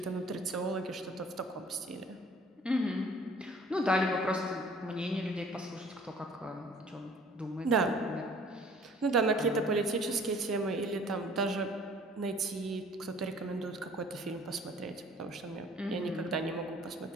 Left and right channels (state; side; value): normal; both; correlation 0.52